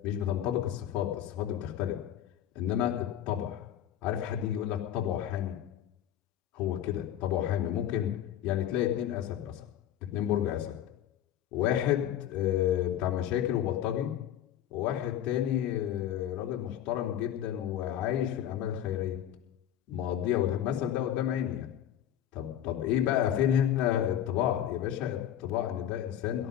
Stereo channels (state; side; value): quieter; right; 10.9 dB